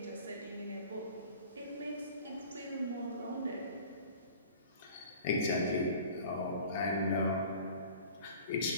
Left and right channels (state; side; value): inverted; both; correlation -0.44